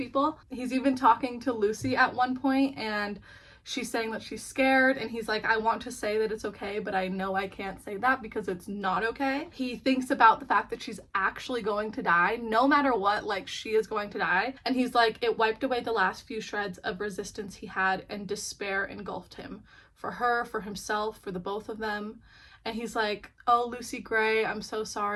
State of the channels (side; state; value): both; identical; correlation 1.00